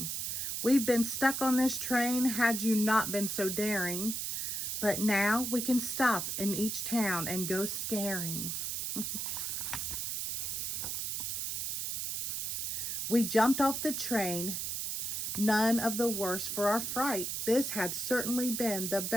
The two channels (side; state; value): right; noise; hiss, 2 dB below the sound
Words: We've been stuck on this train had you not been so daring, but now we can stop in each town and go scaring." We jumped off the train, none of the worse for our fright. This had certainly been the